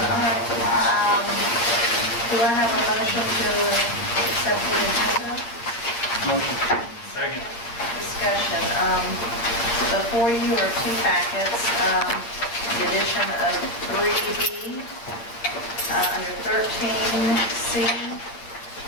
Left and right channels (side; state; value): right; late; 8.4 ms